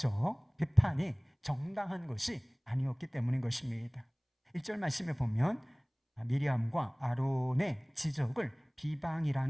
비판이 정당한 것이 아니었기 때문인 것입니다. 1절 말씀에 보면 미리암과 아론의 지적을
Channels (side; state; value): both; identical; correlation 1.00